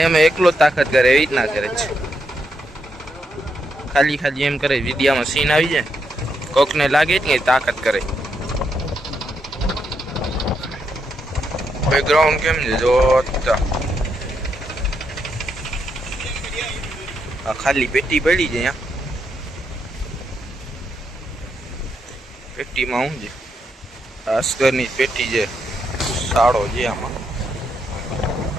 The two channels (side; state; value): both; normal; correlation 0.80